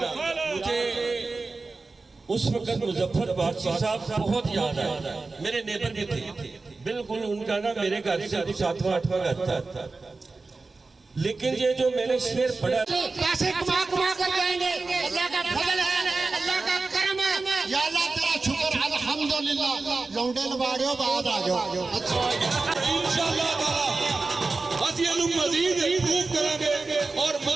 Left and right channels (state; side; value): quieter; left; 3.8 dB